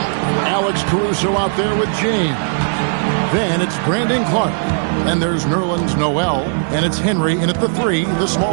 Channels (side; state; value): left; silent; 67 dB below the other